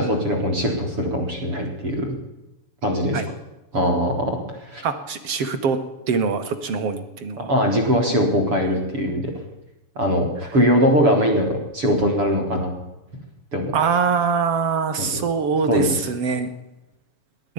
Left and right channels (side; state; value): left; late; 7.6 ms